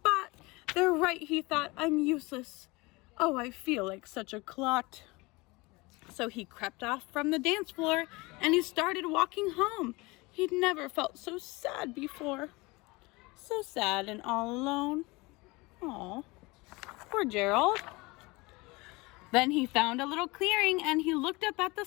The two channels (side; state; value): right; quieter; 24.0 dB